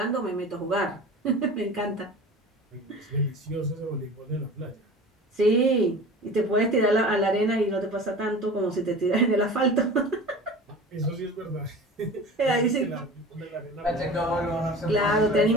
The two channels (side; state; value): both; normal; correlation 0.37